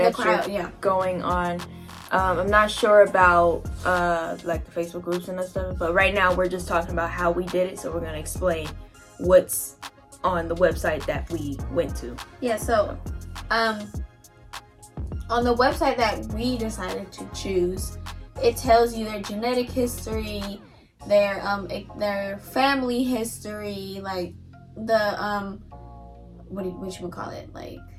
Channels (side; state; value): both; identical; correlation 1.00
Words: you're going on. I'm not sure about like the Facebook groups and that stuff, but right now we're just talking about how we did it, so we're going to explain what's on the website that we went to. Yeah, so on the website that we decided to choose, it tells you their genetic history, their family history, like the what you call it, like